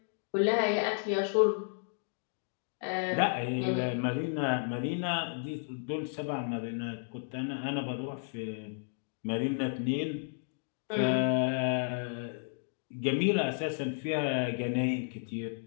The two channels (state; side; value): silent; right; digital silence